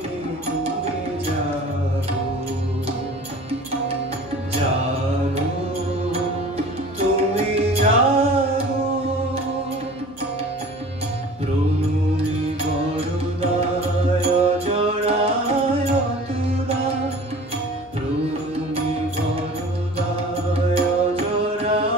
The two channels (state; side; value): noise; left; hum, 26 dB below the sound